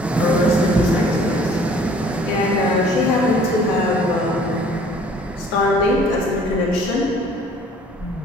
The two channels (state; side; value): normal; both; correlation 0.54